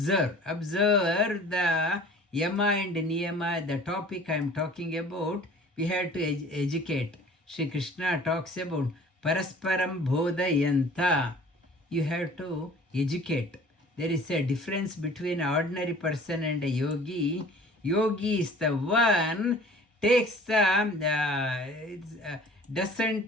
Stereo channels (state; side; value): normal; both; correlation 0.48